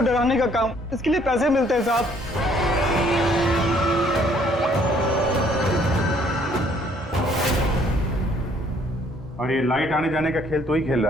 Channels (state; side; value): normal; both; correlation 0.63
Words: डराने का काम, इसके लिए पैसे मिलते हैं साहब। और ये लाइट आने जाने का खेल तो ही खेल